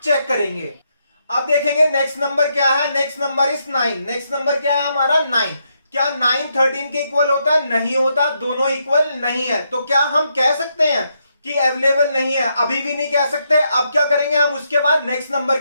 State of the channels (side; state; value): both; inverted; correlation -0.79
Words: चेक करेंगे। अब देखेंगे नेक्स्ट नंबर क्या है। Next number is 9। Next number क्या है हमारा? 9। क्या 9 13 के इक्वल होता है? नहीं होता, दोनों इक्वल नहीं है। तो क्या हम कह सकते हैं कि अवेलेबल नहीं है? अभी भी नहीं कह सकते। अब क्या करेंगे हम? उसके बाद नेक्स्ट नंबर